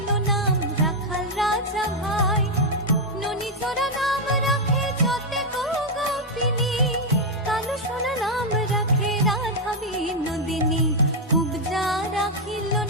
নাম রাখাল রাজা ভাই। ননীচরা নাম রাখে যতে গোপিনী কালো সোনা নাম রাখে রাধা বিনোদিনী। কুবজা রাখিল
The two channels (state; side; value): normal; both; correlation 0.00